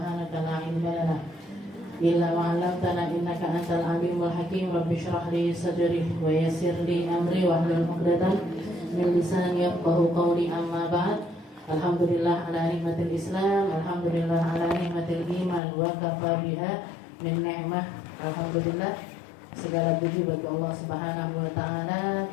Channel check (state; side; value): drops out; right; at 15.6 s